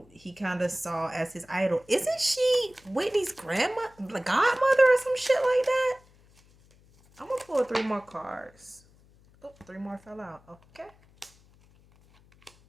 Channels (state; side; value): noise; left; hum, 29 dB below the sound